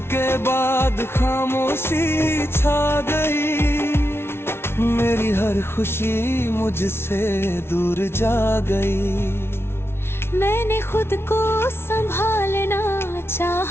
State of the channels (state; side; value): late; right; 0.12 ms